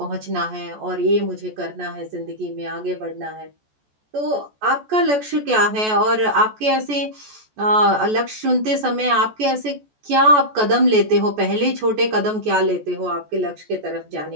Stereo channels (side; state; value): left; late; 14 ms